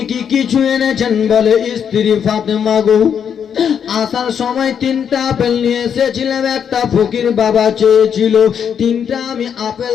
কি কিছু এনেছেন? বলে, স্ত্রী ফাতেমা গো, আসার সময় 3টা আপেল নিয়ে এসেছিলাম, একটা ফকির বাবা চেয়েছিল, 3টা আমি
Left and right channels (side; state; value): right; quieter; 7.9 dB